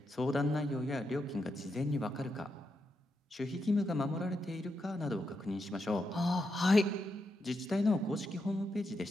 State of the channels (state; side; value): normal; both; correlation 0.84